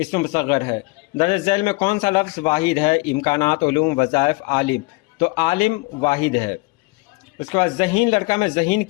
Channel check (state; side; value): quieter; right; 25.0 dB